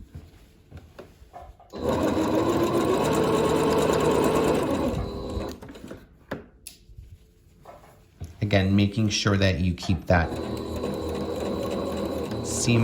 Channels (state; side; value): identical; both; correlation 1.00